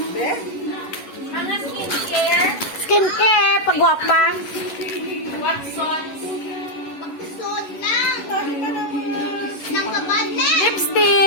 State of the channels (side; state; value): right; late; 11 ms